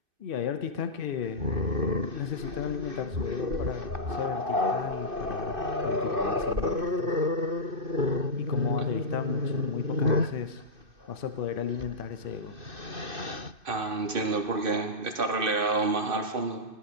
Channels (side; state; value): left; late; 2.6 ms